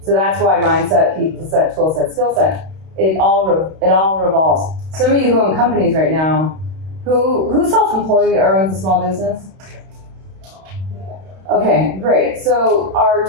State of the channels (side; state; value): left; late; 32 ms